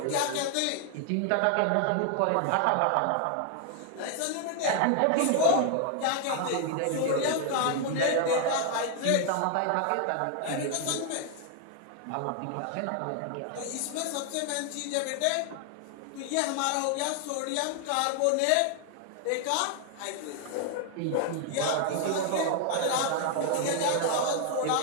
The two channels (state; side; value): different; both; correlation 0.00